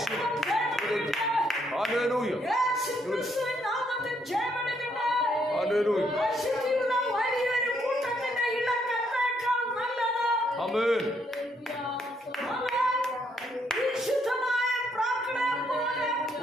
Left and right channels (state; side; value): normal; both; correlation 0.73